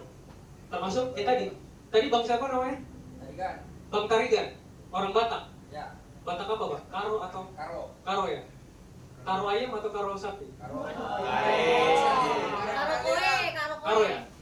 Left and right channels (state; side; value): identical; both; correlation 1.00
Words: Termasuk tadi bang siapa namanya? Tarigan. Bang Tarigan, orang Batak. Ya. Batak apa bang? Karo atau? Karo. Karo ya? Karo ayam atau karo sapi? Karo. Karo ya?